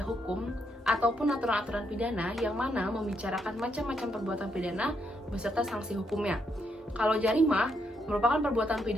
hukum ataupun aturan-aturan pidana yang mana membicarakan macam-macam perbuatan pidana beserta sanksi hukumnya. Kalau jarimah merupakan perbuatan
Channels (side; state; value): both; normal; correlation 0.77